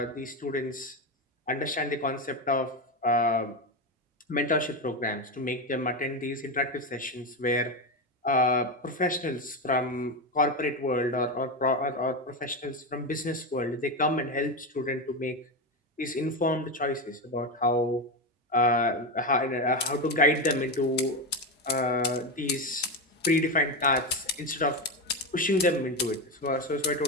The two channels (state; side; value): normal; both; correlation 0.13